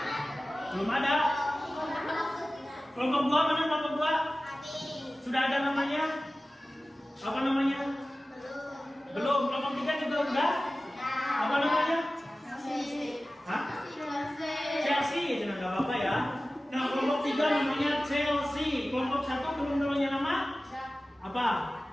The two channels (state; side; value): normal; both; correlation 0.96